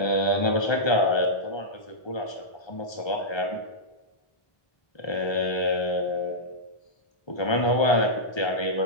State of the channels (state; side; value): late; right; 1.3 ms